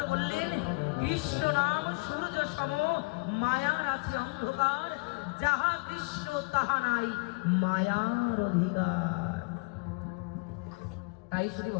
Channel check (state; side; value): quieter; right; 29.2 dB